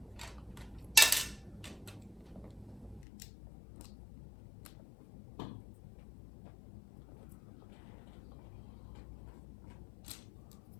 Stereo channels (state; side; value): drops out; right; at 3.1 s